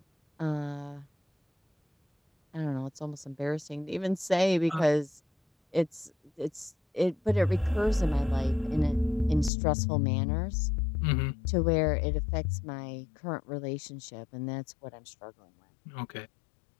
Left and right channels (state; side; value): drops out; right; at 9.5 s